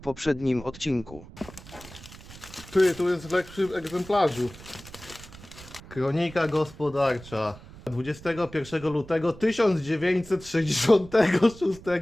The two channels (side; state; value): right; noise; rumble, 18 dB below the sound